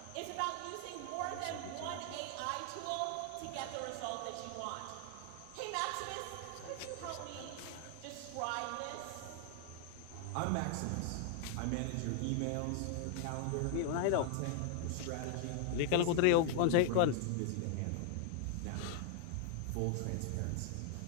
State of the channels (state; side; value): different; both; correlation 0.00